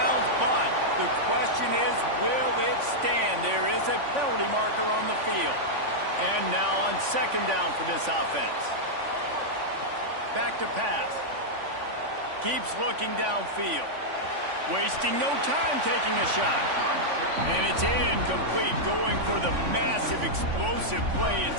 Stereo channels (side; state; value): left; late; 3.5 ms